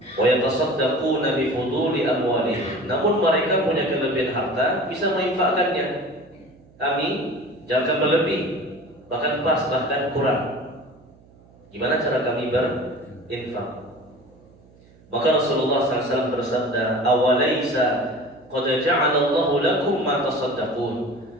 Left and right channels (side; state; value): right; noise; hum, 27 dB below the sound